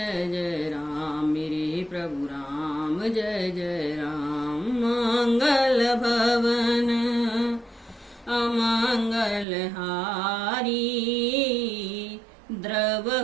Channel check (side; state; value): left; drops out; at 9.5 s